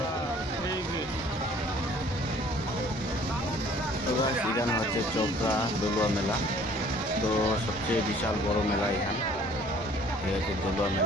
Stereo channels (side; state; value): both; normal; correlation 0.55